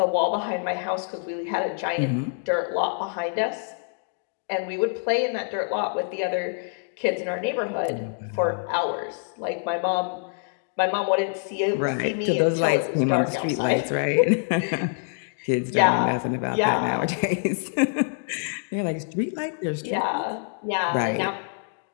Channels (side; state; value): right; silent; digital silence